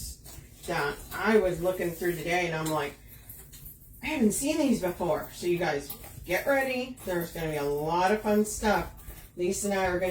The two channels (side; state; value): both; identical; correlation 1.00